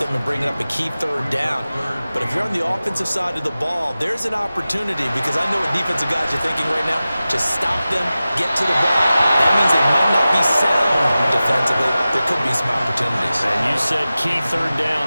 and bringing up a key 3rd down. But if you're on the offensive side of the ball, there's an opportunity, because I know what defensive guys are thinking right now, to stop them, get to the ball. That means they might not be sound defensively. There could be some opportunities. And you said key 3rd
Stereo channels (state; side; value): inverted; both; correlation -0.95